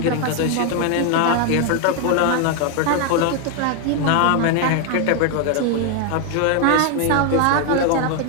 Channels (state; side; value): different; both; correlation 0.01